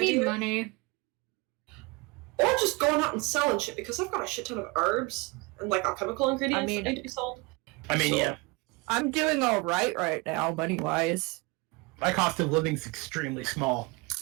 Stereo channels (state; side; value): quieter; left; 26.1 dB